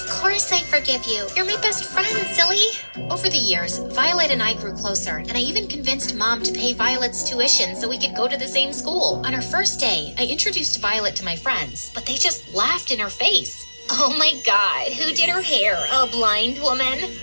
course I forgive you. You're my best friend, silly. Over the years, Violet and I grew closer, and I even convinced Mom to pay Violet's tuition so we could go to the same school. On her first day, I introduced Violet to my friends, but they just laughed in her face. Oh my God, who did her hair? A blind woman?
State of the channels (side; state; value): both; inverted; correlation -1.00